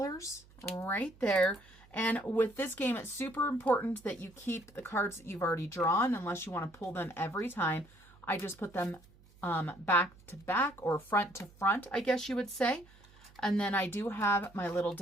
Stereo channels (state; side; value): noise; right; hum, 25 dB below the sound